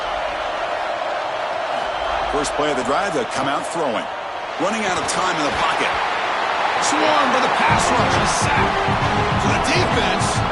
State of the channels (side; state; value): both; identical; correlation 1.00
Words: First play of the drive, they'll come out throwing. Running out of time in the pocket. Swarmed by the pass rush and sacked. For the defense,